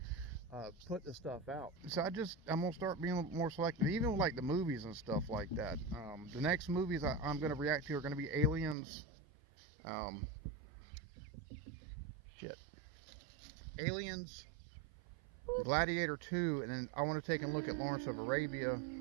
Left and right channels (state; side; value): drops out; left; at 8.8 s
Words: put the stuff out. So I'm gonna start being a little more selective, even with like the movies and stuff like that. The next movies I'm gonna react to are gonna be Aliens, shit, Aliens, Gladiator 2, and then I want to take a look at Lawrence of Arabia